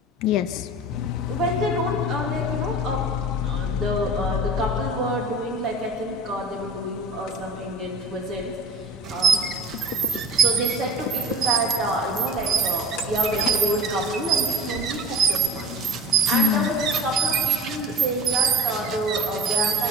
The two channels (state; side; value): normal; both; correlation 0.35